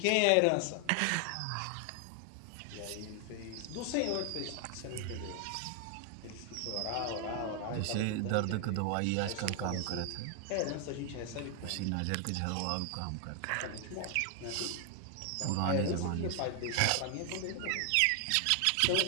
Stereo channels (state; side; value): different; both; correlation 0.00